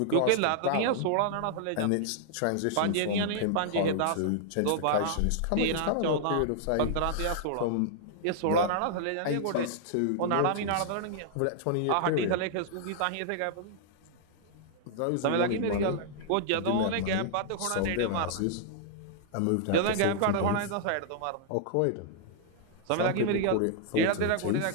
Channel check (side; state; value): both; different; correlation -0.01